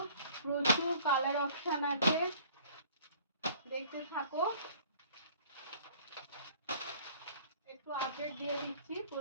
প্রচুর কালার অপশান আছে, দেখতে থাকো। একটু আপডেট দিয়ে দিচ্ছি,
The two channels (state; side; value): inverted; both; correlation -0.52